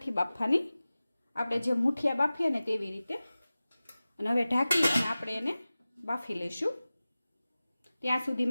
બાફવાની, આપણે જે મુઠિયા બાફીએ ને તેવી રીતે। અને હવે ઢાંકી અને આપણે એને બાફી લઈશું। ત્યાં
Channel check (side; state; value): both; inverted; correlation -0.97